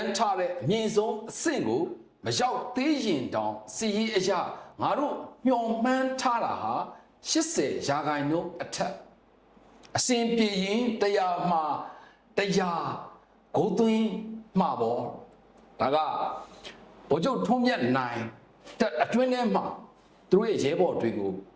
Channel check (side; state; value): both; identical; correlation 1.00